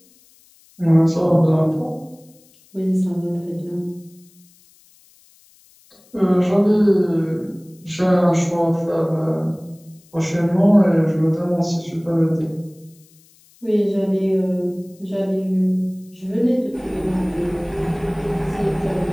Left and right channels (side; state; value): left; noise; hiss, 30 dB below the sound